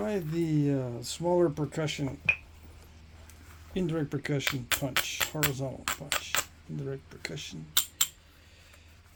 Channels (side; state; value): both; identical; correlation 1.00